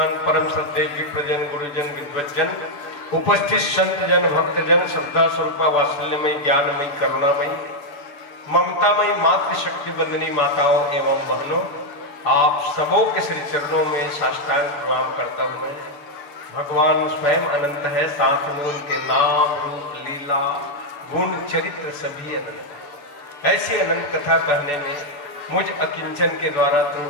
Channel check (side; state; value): right; late; 7.0 ms